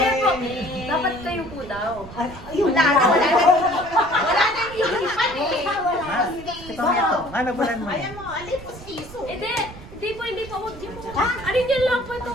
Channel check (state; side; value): noise; right; rumble, 16 dB below the sound